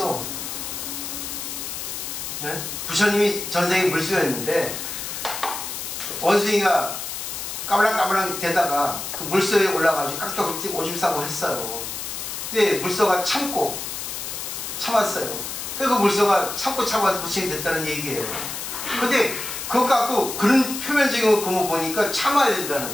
네? 부처님이 전생에 물소였는데 원숭이가 까불랑까불랑 대다가 그 물소에 올라가지고 깍둑 오줌 싸고 했어요. 근데 물소가 참았어요. 그 물소가 참아서 부처님이 됐다는 얘기예요. 근데 그거 갖고 그런 표면적인 거 보니까 참아야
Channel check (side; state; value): left; noise; hiss, 6 dB below the sound